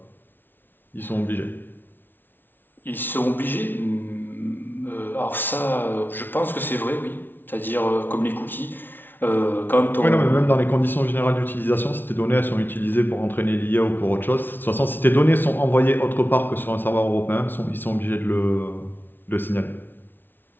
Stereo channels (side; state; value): right; late; 0.097 ms